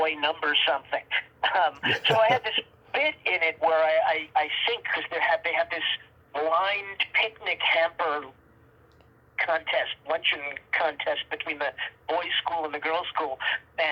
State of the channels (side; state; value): both; identical; correlation 1.00